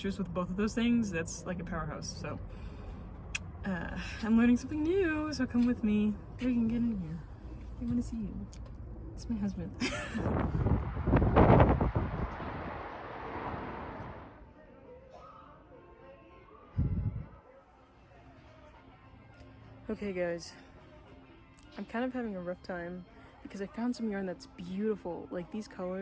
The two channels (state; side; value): identical; both; correlation 1.00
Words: with both of those things, that's like a powerhouse. So I'm learning something new, so come with me. You can get in here. I want to see you. It's my husband. Okay guys, I'm kind of having a rough time because I found some yarn that's beautiful. Like, these